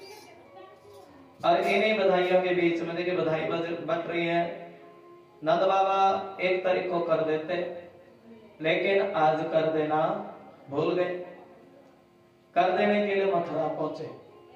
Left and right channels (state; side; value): identical; both; correlation 1.00